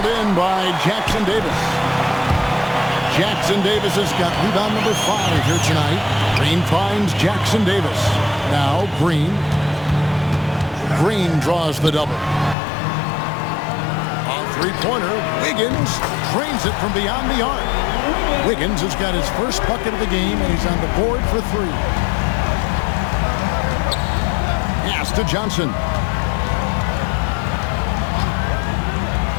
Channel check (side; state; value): right; drops out; at 12.6 s